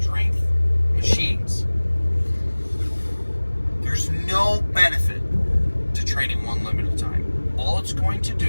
machines. There's no benefit to training one limb at a time. All it's going to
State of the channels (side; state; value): both; inverted; correlation -1.00